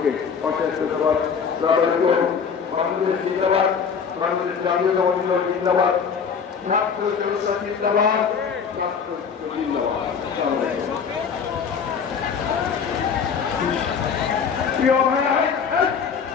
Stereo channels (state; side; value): quieter; right; 6.5 dB